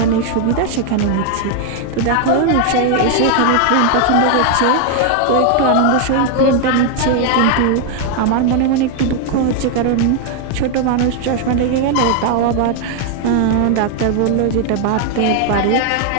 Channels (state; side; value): different; both; correlation 0.00